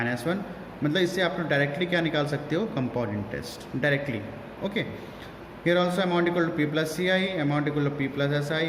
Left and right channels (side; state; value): both; identical; correlation 1.00